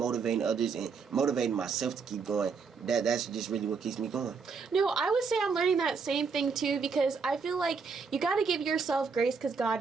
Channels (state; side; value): quieter; left; 5.3 dB